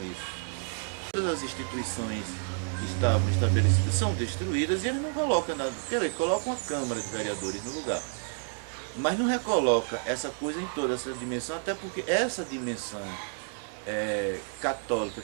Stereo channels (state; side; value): silent; left; 58 dB below the other